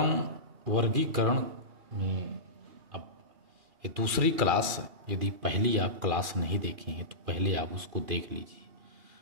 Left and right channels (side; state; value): left; late; 2.8 ms